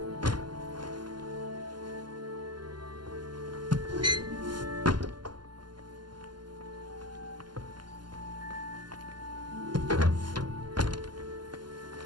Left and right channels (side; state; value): left; late; 0.71 ms